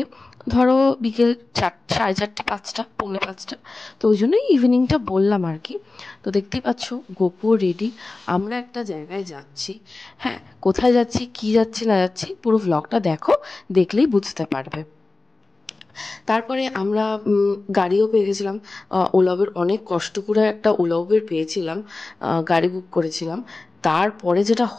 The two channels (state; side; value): quieter; right; 3.4 dB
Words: ধরো বিকেল 4:30, 5টা, পৌনে 5টা। তো ওই জন্যই ইভিনিংটা বললাম আর কি। তো দেখতেই পাচ্ছ গোপু রেডি, আমরা একটা জায়গায় যাচ্ছি। হ্যাঁ, কোথায় যাচ্ছি, কি যাচ্ছি না যাচ্ছি, পুরো ভ্লগটা দেখো, দেখলেই বুঝতে পারবে। তারপরে আমরা গাড়িও পেয়ে গেছিলাম। ওলা উবের, অনেক কষ্ট করে একটা ওলা উবের পেয়েছিলাম, গাড়ি বুক করেছিলাম। তারপরে যেটা